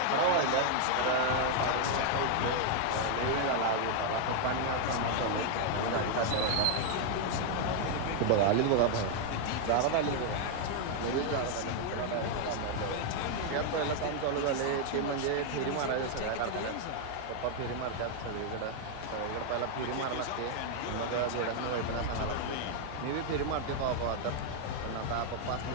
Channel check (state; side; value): different; both; correlation 0.00